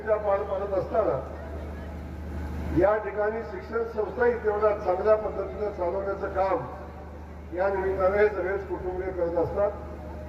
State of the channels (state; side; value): identical; both; correlation 1.00